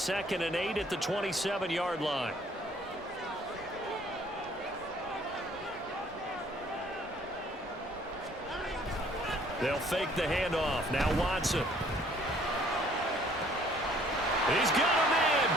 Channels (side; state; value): both; normal; correlation 0.59